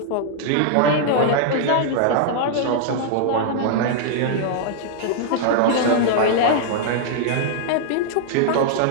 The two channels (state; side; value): different; both; correlation -0.01